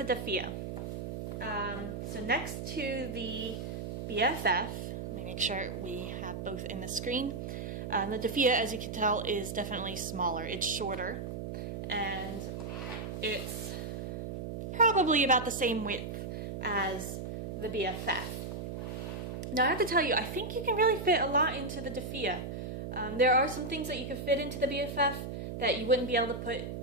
Defea. So next to the BFF, let me make sure we have both in the screen. The Defea, as you can tell, is definitely smaller. It's shorter, and it's probably about the same width as the BFF. Now I have to tell you, I think you can really fit a lot into the Defea. There are some things that you could fit into the BFF that you wouldn't be able to put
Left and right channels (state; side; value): noise; right; hum, 6 dB below the sound